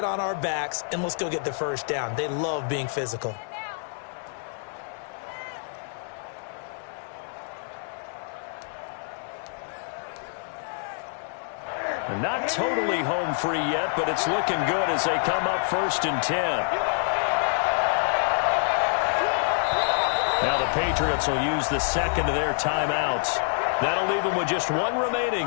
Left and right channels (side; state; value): right; silent; digital silence